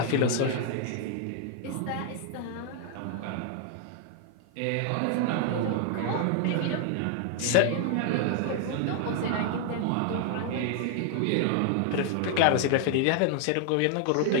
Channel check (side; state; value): both; different; correlation 0.00